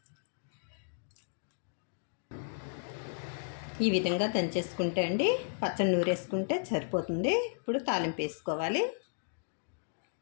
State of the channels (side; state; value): right; silent; digital silence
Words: ఈ విధంగా దంచేసుకుంటే అండి పచ్చడి నూరేసుకుంటే సరిపోతుంది. ఇప్పుడు తాలింపు వేసుకోవాలి.